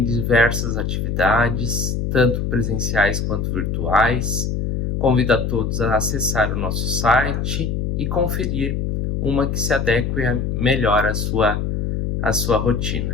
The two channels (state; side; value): noise; left; hum, 1 dB below the sound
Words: diversas atividades, tanto presenciais quanto virtuais. Convido a todos a acessar o nosso site e conferir uma que se adeque melhor à sua